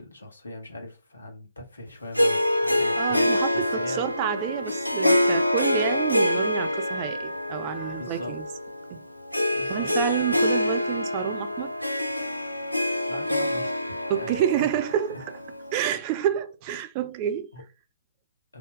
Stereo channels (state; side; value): inverted; both; correlation -0.70